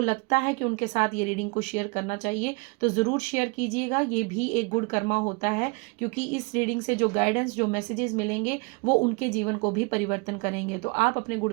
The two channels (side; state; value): left; quieter; 29.8 dB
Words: है कि उनके साथ ये रीडिंग को शेयर करना चाहिए तो ज़रूर शेयर कीजिएगा। ये भी एक गुड कर्मा होता है, क्योंकि इस रीडिंग से जो गाइडेंस, जो मैसेजेस मिलेंगे वो उनके जीवन को भी परिवर्तन करेंगे। तो आप अपने